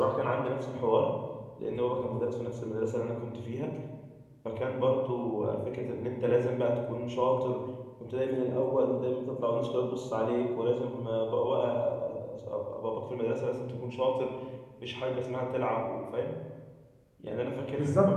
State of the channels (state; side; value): identical; both; correlation 1.00